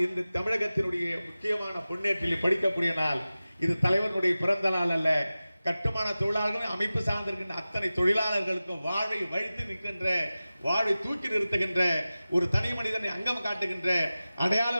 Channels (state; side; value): inverted; both; correlation -0.96